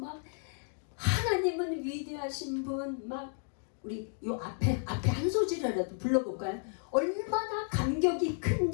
하나님은 위대하신 분, 막 우리 요 앞에 한 소절이라도 불러볼까요? 얼마나 감격이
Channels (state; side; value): silent; right; 56 dB below the other